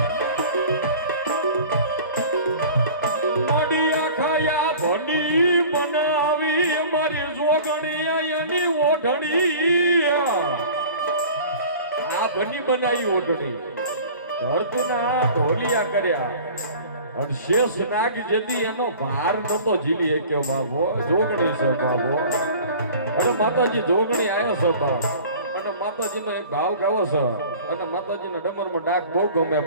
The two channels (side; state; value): both; inverted; correlation -0.43